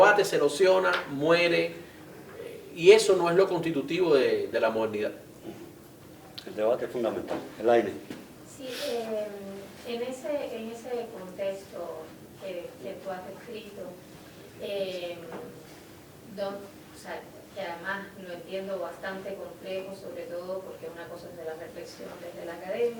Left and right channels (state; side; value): identical; both; correlation 1.00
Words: se erosiona, muere, y eso no es lo constitutivo de la modernidad. El debate es fundamental. El aire. Sí, en ese contexto que tú has escrito, bastante complejo, sobre todo porque una cosa es de la reflexión desde la